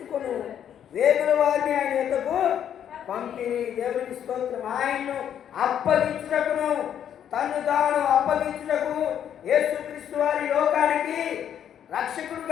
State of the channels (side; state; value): right; quieter; 9.5 dB